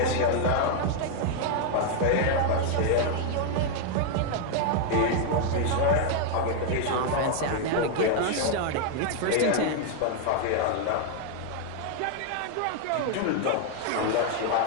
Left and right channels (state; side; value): different; both; correlation 0.00